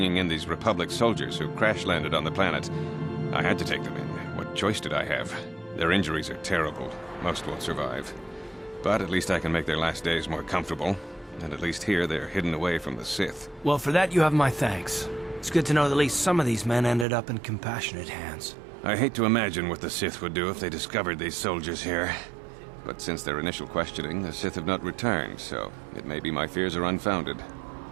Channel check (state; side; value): drops out; left; at 17.1 s